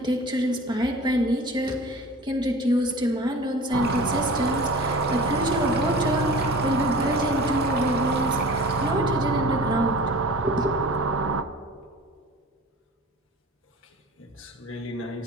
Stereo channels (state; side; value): normal; both; correlation 0.40